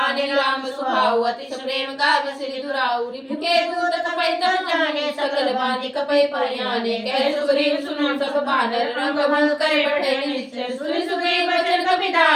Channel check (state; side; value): identical; both; correlation 1.00